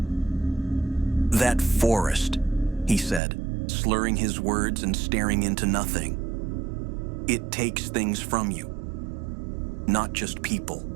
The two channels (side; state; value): left; drops out; at 3.2 s